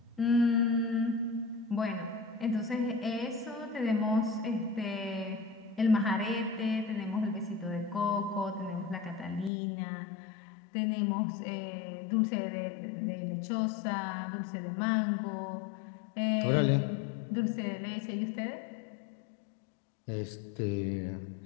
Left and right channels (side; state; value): right; drops out; at 9.5 s